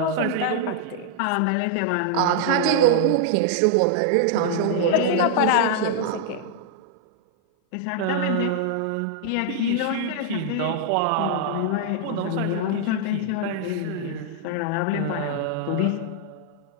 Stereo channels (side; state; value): both; different; correlation -0.01